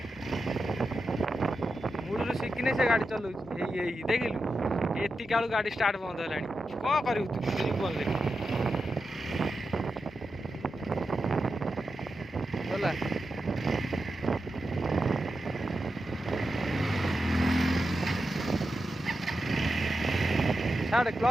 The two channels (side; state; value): both; normal; correlation 0.89